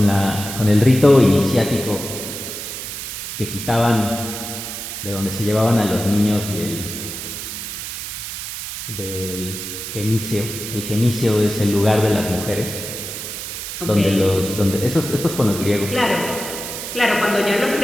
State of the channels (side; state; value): right; noise; hiss, 7 dB below the sound